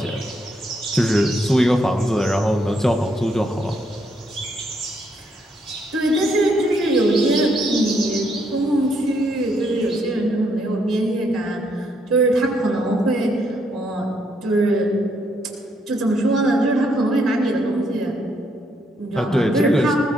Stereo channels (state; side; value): normal; both; correlation 0.74